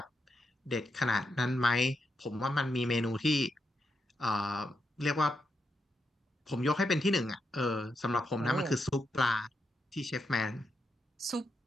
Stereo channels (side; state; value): both; normal; correlation 0.84